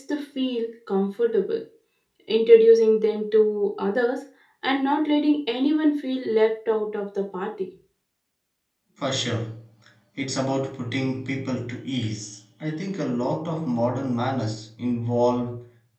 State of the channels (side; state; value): both; identical; correlation 1.00